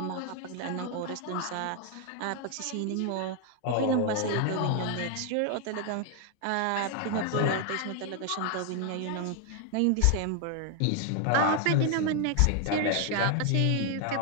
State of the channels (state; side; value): different; both; correlation 0.00